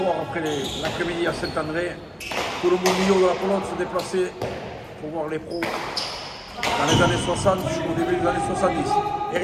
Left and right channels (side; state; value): both; identical; correlation 1.00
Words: après l'après-midi à Saint-André. Tout le monde milieu de la pelote se déplaçait pour voir les pros dans les années 60 jusqu'au début des années 70. Et